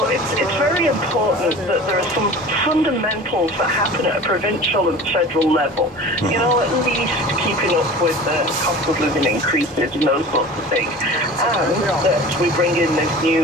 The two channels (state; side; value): normal; both; correlation 0.39